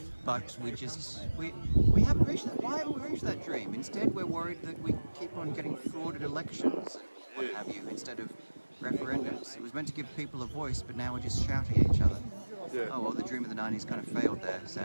But we haven't reached that. Why haven't we reached that dream? Instead, we're worried that we keep on getting frauded elections and what have you, instead of referendums. It was meant to give people a voice, but now we're just shouting at each other. Yeah. Oh well, the dream of the 90s kind of failed there,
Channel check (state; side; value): inverted; both; correlation -1.00